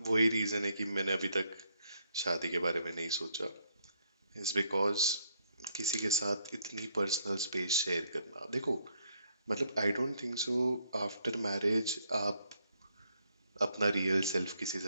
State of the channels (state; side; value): inverted; both; correlation -0.71